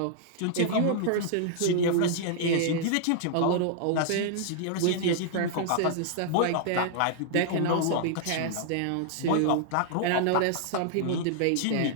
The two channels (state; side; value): different; both; correlation -0.01